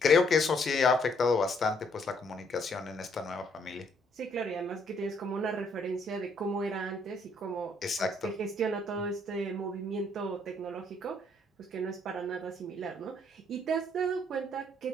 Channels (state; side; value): normal; both; correlation 0.68